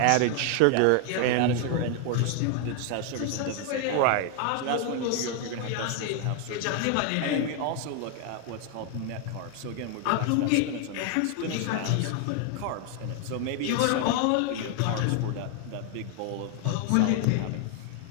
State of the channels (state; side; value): different; both; correlation 0.00